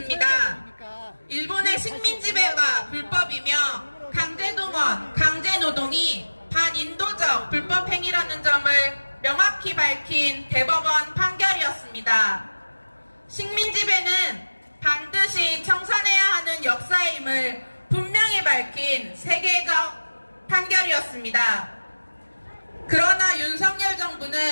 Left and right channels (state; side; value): inverted; both; correlation -1.00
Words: 일본의 식민지배가 불법이며 강제동원, 강제노동이 반인도적 불법행위라는 점을 명확히 밝힌 대법원 판결이었습니다. 식민지배는 반드시 청산해야 하는 역사임을 분명히 밝힌 세계적 판결이었습니다. 그러나 윤석열